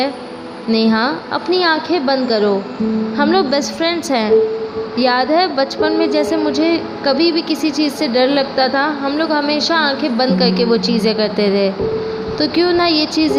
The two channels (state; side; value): identical; both; correlation 1.00